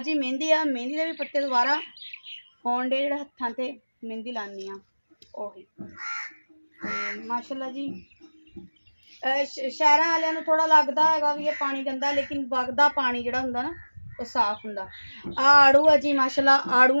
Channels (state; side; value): inverted; both; correlation -1.00